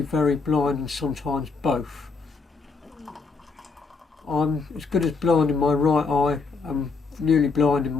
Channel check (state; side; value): quieter; right; 4.5 dB